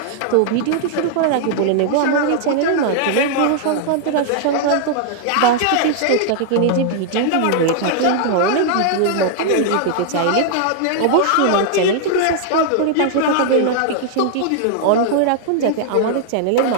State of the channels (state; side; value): different; both; correlation 0.00